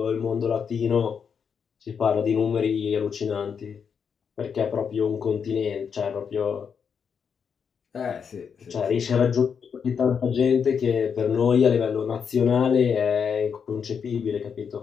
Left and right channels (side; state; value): right; quieter; 6.7 dB